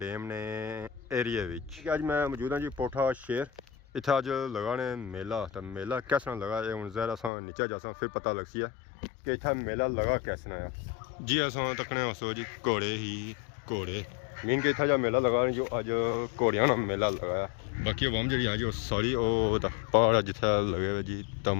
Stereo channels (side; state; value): right; drops out; at 7.3 s